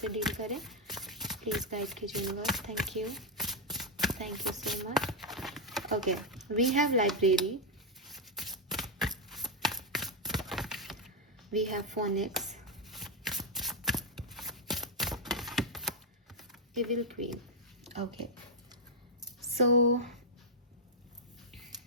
डील करें, प्लीज़ गाइड कीजिए universe. Thank you so much. Okay, we have library, we have phonics, evil queen. Okay, so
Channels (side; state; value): both; normal; correlation 0.00